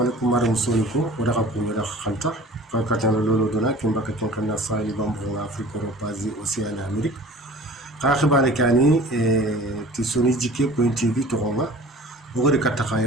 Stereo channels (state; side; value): normal; both; correlation 0.44